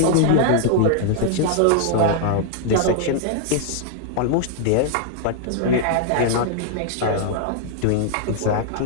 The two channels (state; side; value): different; both; correlation 0.00